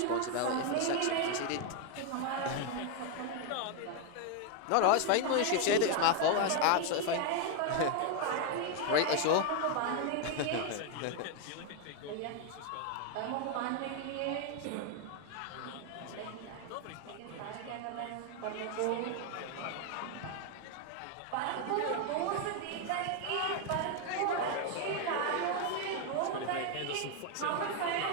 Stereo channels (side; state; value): both; different; correlation 0.01